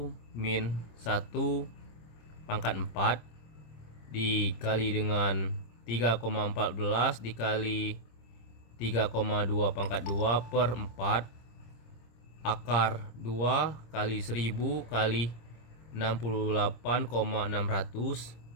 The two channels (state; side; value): late; right; 26 ms